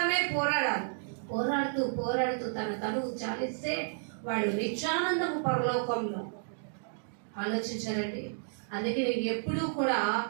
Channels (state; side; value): silent; left; digital silence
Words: పోరాడాలి. పోరాడుతూ పోరాడుతూ తన తనువు చాలిస్తే వాడు నిత్యానందము పరలోకంలో. ఆలోచించారండి? అందుకే నేను ఎప్పుడూ కూడా